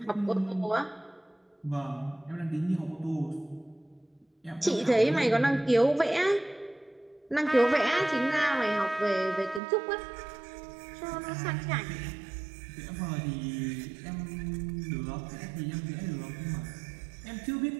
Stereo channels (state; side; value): drops out; left; at 9.6 s